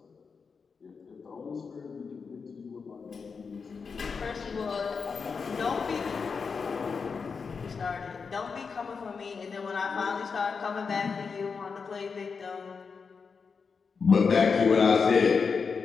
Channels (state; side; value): quieter; right; 5.4 dB